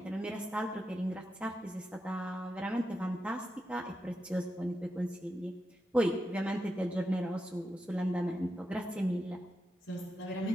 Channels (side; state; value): both; normal; correlation 0.88